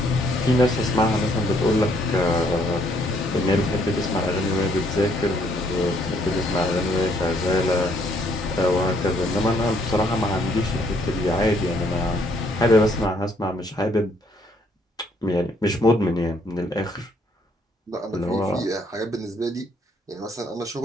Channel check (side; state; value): both; normal; correlation 0.68